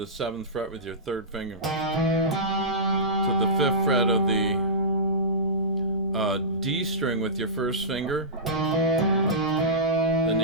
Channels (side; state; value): both; normal; correlation -0.19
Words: 7th fret with your 3rd finger, to the 5th fret of the D string with your 1st finger. Then